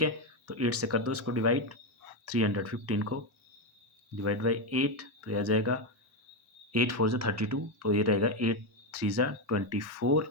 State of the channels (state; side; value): normal; both; correlation 0.08